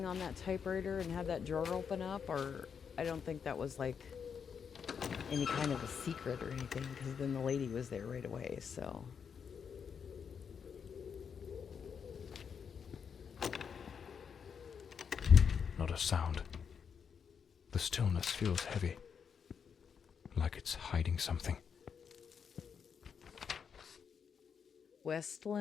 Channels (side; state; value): right; quieter; 6.8 dB